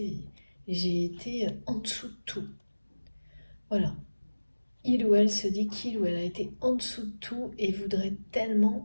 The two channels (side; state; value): both; inverted; correlation -1.00